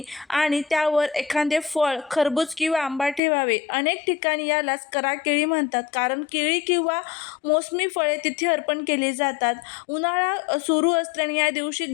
आणि त्यावर एखादे फळ, खरबूज किंवा आंबा ठेवावे. अनेक ठिकाणी यालाच करा केळी म्हणतात, कारण केळी किंवा मोसमी फळे तिथे अर्पण केली जातात. उन्हाळा सुरू असल्याने या दिवशी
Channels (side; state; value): right; drops out; at 3.2 s